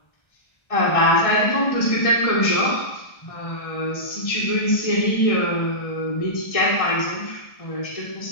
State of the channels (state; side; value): late; right; 1.3 ms